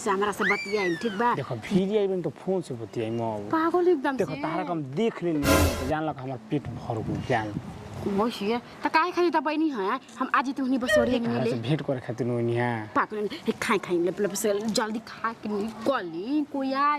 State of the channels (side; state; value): both; identical; correlation 1.00